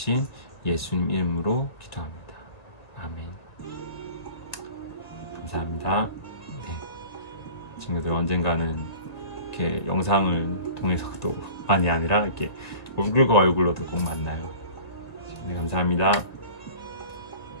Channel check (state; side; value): late; right; 1.9 ms